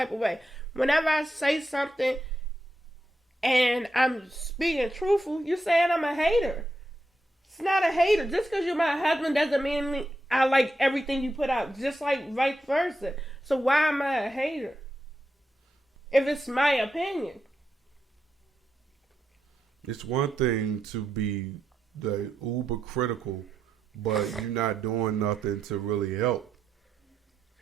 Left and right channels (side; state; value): both; normal; correlation 0.84